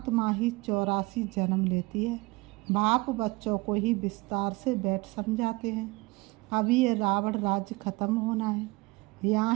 ही 84 जन्म लेती है। बाप बच्चों को ही विस्तार से बैठ समझाते हैं। अभी ये रावण राज्य खत्म होना है। यहाँ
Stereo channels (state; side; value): quieter; left; 23.8 dB